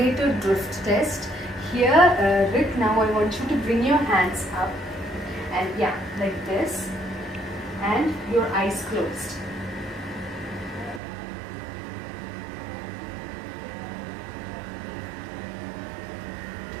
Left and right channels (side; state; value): left; drops out; at 11.0 s